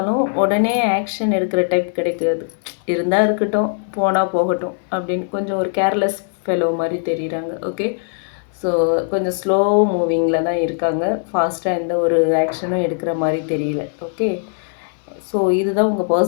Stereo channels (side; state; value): right; silent; 66 dB below the other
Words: உடனே ஆக்ஷன் எடுக்கிற டைப் கிடைக்காது. இருந்தால் இருக்கட்டும், போனால் போகட்டும் அப்படின்னு கொஞ்சம் ஒரு கேர்லெஸ் ஃபெலோ மாதிரி தெரியுறாங்க. ஓகே, ஸோ கொஞ்சம் ஸ்லோ மூவிங்கில் தான் இருக்காங்க, ஃபாஸ்ட்டாக எந்த ஒரு ஆக்ஷனும் எடுக்கிற மாதிரி தெரியல. ஓகே, ஸோ இதுதான் உங்கள்